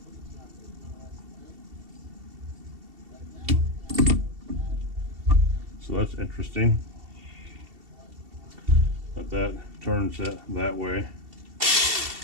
So that's interesting. But that turns it that way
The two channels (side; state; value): left; late; 2.7 ms